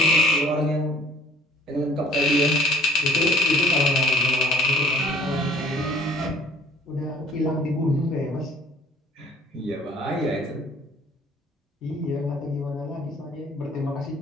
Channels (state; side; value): normal; both; correlation 0.54